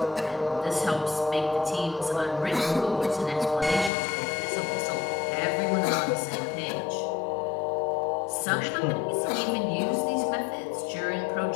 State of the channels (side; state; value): right; drops out; at 3.9 s